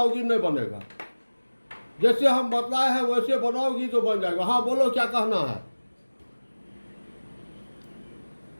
नहीं बनेगा, जैसे हम बतलाए हैं वैसे बनाओगी तो बन जाएगा। हाँ बोलो क्या कहना है।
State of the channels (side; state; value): both; inverted; correlation -1.00